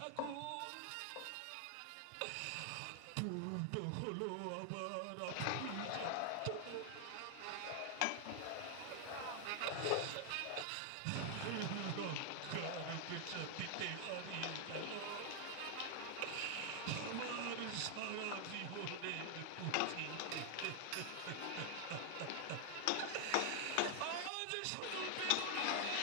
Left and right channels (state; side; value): different; both; correlation 0.00